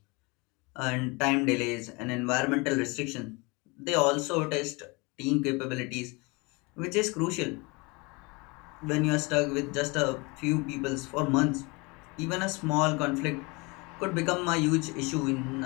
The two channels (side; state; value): right; quieter; 27.2 dB